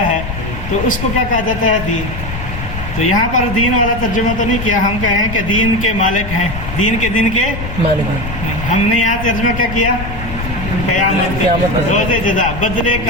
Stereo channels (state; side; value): noise; left; rumble, 8 dB below the sound